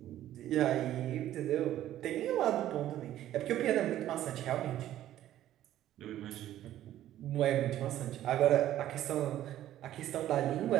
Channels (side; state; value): left; quieter; 12.8 dB